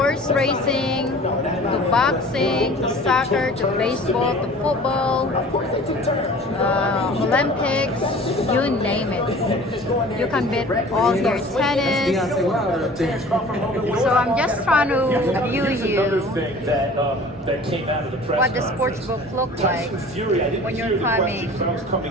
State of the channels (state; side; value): normal; both; correlation 0.45